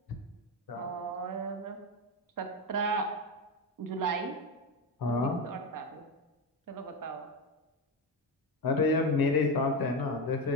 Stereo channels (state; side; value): normal; both; correlation 0.15